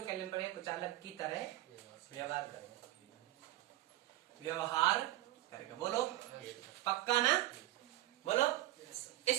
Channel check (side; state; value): left; quieter; 16.2 dB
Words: केल्विन पर कुचालक की तरह व्यवहार करेगा, व्यवहार करेगा। बोलो पक्का ना? बोलो।